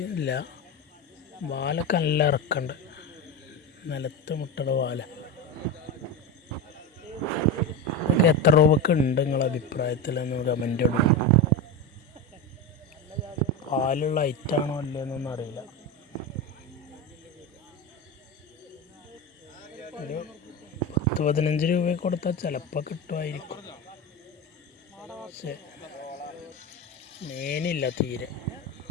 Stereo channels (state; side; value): normal; both; correlation 0.19